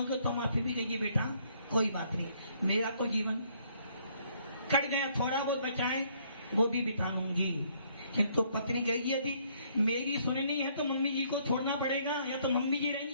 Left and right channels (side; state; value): both; inverted; correlation -0.66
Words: तो माफी भी कहेगी बेटा कोई बात नहीं, मेरा तो जीवन कट गया, थोड़ा बहुत बचाए वो भी बिता लूंगी। किंतु पत्नी कहेगी यदि मेरी सुननी है तो मम्मी जी को छोड़ना पड़ेगा, या तो मम्मी जी